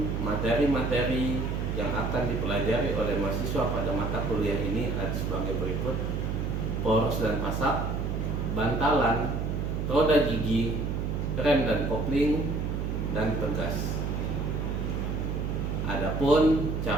materi-materi yang akan dipelajari oleh mahasiswa pada mata kuliah ini ada sebagai berikut: poros dan pasak, bantalan, roda gigi, rem dan kopling, dan pegas. Adapun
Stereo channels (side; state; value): right; noise; hum, 1 dB below the sound